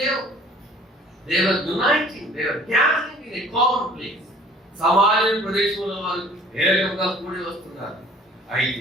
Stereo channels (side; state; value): both; normal; correlation 0.52